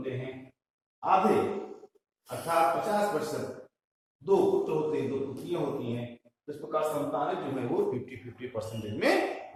हैं। आधे अर्थात 50% दो पुत्र होते हैं, दो पुत्रियां होती हैं। तो इस प्रकार संतानें जो है वो 50-50% में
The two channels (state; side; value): identical; both; correlation 1.00